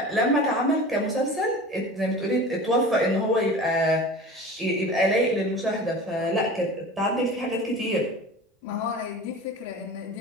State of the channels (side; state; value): both; normal; correlation 0.36